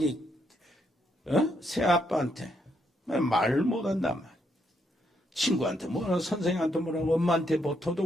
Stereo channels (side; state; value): both; normal; correlation 0.76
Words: 새아빠한테 말 못한단 말이야. 친구한테 뭐라 선생님한테 뭐라고 엄마한테 뭐